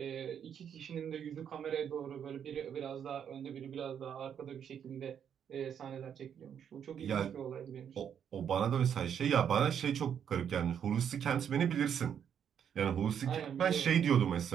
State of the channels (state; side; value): quieter; left; 8.4 dB